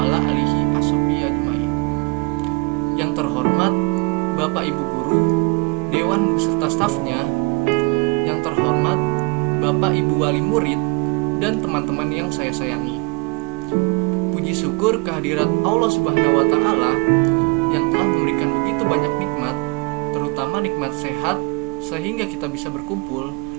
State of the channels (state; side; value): quieter; left; 28.8 dB